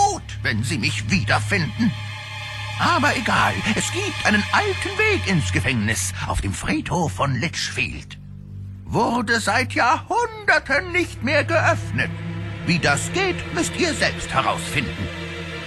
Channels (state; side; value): identical; both; correlation 1.00